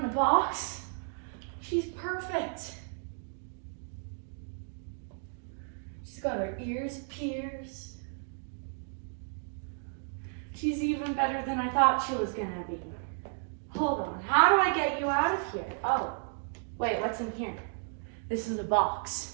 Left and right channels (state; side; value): silent; left; 56 dB below the other